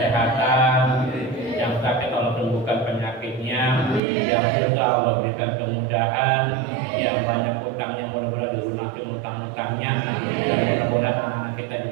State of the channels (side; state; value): left; drops out; at 4.0 s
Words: yang sakit Allah sembuhkan penyakitnya, yang susah Allah berikan kemudahan, yang banyak utangnya mudah-mudahan dilunasi utang-utangnya, dan mudah-mudahan anak-anak kita